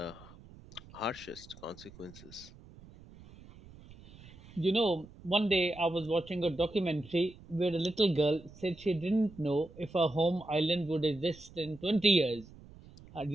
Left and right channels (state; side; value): noise; right; rumble, 20 dB below the sound